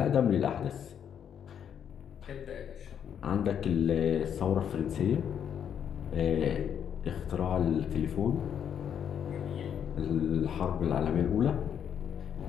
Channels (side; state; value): right; quieter; 8.6 dB